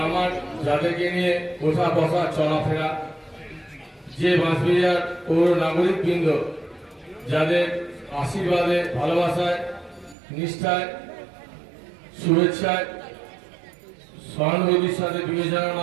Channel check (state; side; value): drops out; left; at 10.2 s